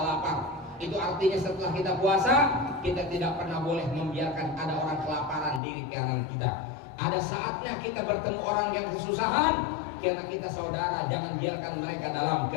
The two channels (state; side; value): drops out; right; at 5.6 s